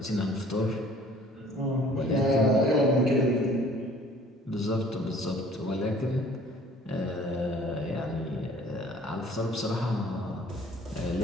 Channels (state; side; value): normal; both; correlation 0.53